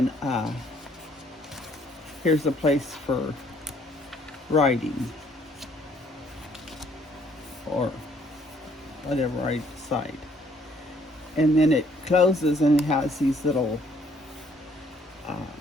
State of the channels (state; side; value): normal; both; correlation 0.64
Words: here's a place for writing, or whatever I decide. And then it closes and it has these little